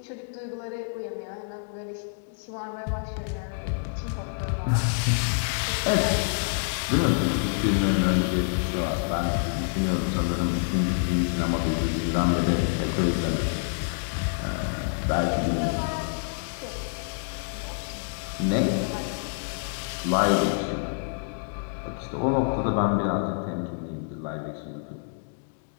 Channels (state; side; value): silent; right; digital silence